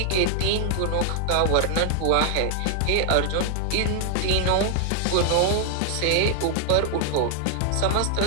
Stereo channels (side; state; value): both; different; correlation 0.00